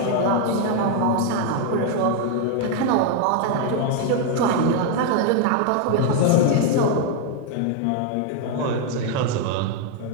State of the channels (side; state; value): both; different; correlation 0.01